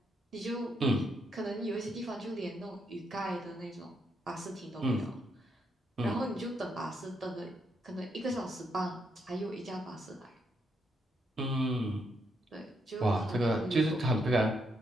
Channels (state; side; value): normal; both; correlation 0.78